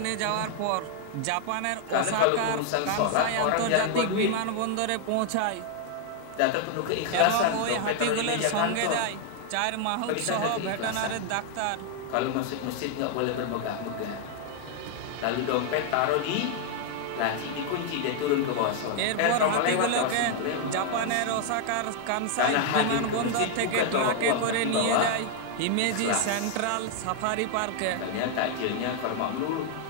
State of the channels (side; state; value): both; different; correlation 0.00